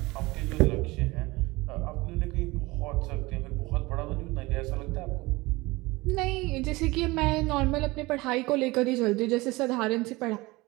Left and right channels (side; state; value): left; quieter; 21.8 dB